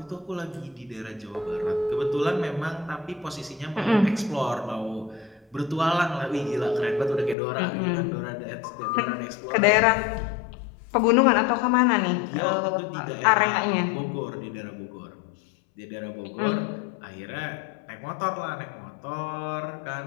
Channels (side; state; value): right; drops out; at 7.4 s